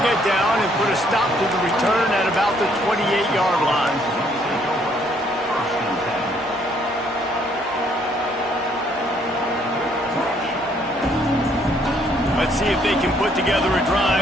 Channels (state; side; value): normal; both; correlation 0.66